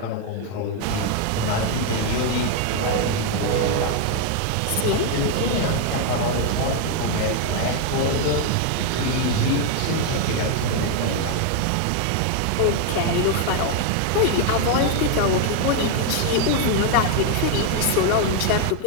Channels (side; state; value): both; different; correlation 0.01